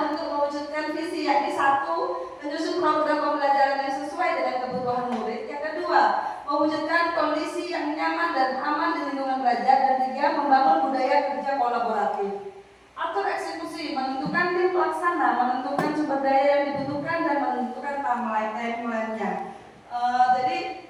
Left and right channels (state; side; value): identical; both; correlation 1.00